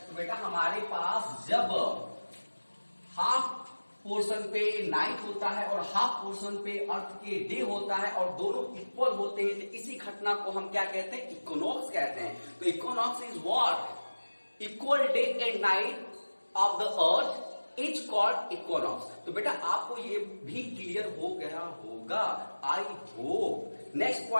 बेटा हमारे पास जब हाफ पोर्शन पे नाइट होता है और हाफ पोर्शन पे अर्थ के डे होता है और दोनों इक्वल होते हैं, तो इसी घटना को हम क्या कहते हैं? इक्विनॉक्स कहते हैं। तो equinox is what? Equal day and night of the earth is called equinox. तो बेटा आपको ये भी क्लियर हो गया होगा, I hope. Next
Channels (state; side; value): inverted; both; correlation -1.00